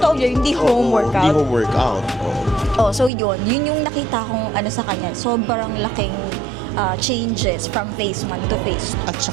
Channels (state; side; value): drops out; left; at 3.1 s